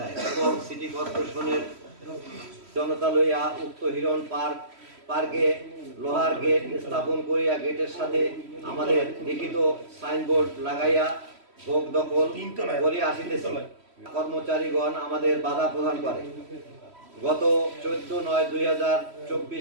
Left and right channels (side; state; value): left; late; 3.1 ms